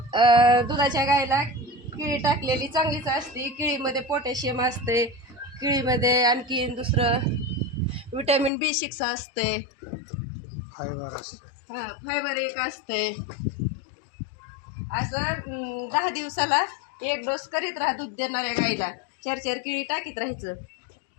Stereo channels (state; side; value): drops out; right; at 8.5 s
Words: दुधाच्या गाईला केळी टाकलेली चांगलीच असते. केळीमध्ये पोटॅशियम असते, केळीमध्ये आणखीन दुसरं विटॅमिन B6 असते, फायबर असते. हां, फायबर एक असते. असं 10 दिवसाला 1 डोस करीत राहा दूध देणाऱ्या गाईला. 4-4 केळी टाकीत राहायचं.